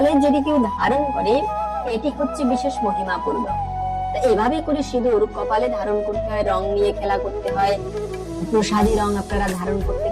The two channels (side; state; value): both; identical; correlation 1.00